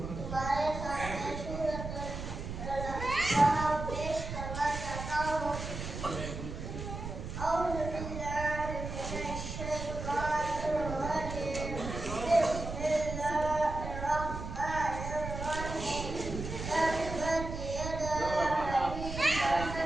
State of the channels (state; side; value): noise; right; rumble, 7 dB below the sound